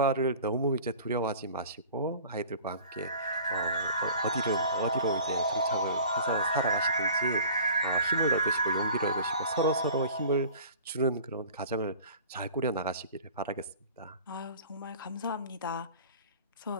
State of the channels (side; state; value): both; inverted; correlation -0.45